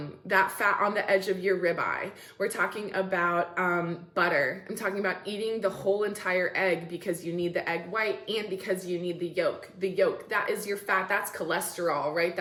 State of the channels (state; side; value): identical; both; correlation 1.00